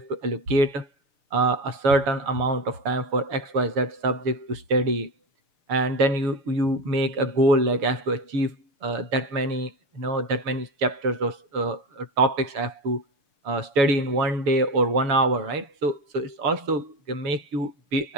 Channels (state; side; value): late; left; 6.6 ms